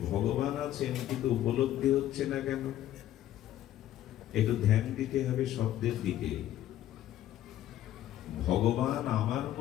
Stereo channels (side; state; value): right; quieter; 12.8 dB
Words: ভগবান আছেন, কিন্তু উপলব্ধি হচ্ছে না কেন? একটু ধ্যান দিতে হবে শব্দের দিকে। ভগবান আমার